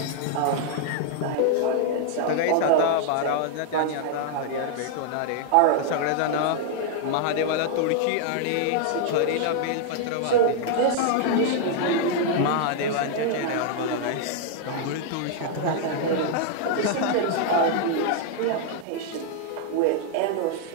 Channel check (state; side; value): different; both; correlation 0.00